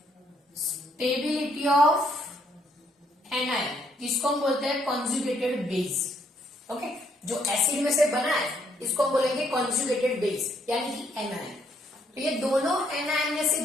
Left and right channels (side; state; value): both; normal; correlation 0.70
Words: stability of anion, जिसको हम बोलते हैं कॉन्जुगेटेड बेस। ओके, जो एसिड में से बना है इसको हम बोलेंगे कॉन्जुगेटेड बेस, यानी कि एनायन। तो ये दोनों एनायन में से